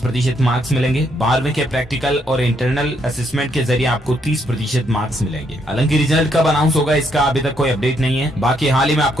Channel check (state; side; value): normal; both; correlation 0.74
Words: मार्क्स मिलेंगे। 12वीं के प्रैक्टिकल और इंटरनल असेसमेंट के जरिए आपको 30% मार्क्स मिलेंगे। हालांकि रिजल्ट कब अनाउंस होगा इसका अभी तक कोई अपडेट नहीं है। बाकी हाल ही में